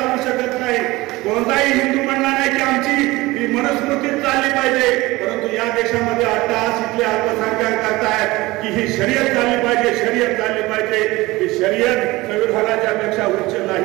शकत नाही. कोणताही हिंदू म्हणणार नाही की आमची मनुस्मृती चालली पाहिजे. परंतु या देशामध्ये अट्टहास इथले अल्पसंख्याक करतायत की ही शर्यत चालली पाहिजे, शर्यत चालली पाहिजे. ही शर्यत संविधानाच्या पेक्षा उच्च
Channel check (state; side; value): quieter; left; 20.3 dB